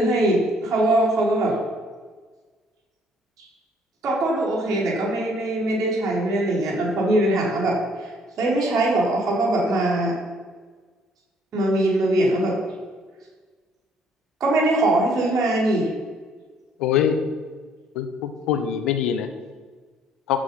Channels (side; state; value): both; normal; correlation 0.62